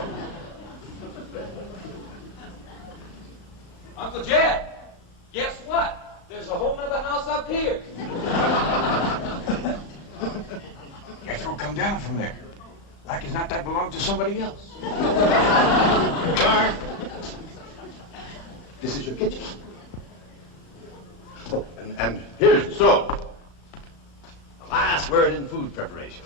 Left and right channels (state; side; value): late; right; 36 ms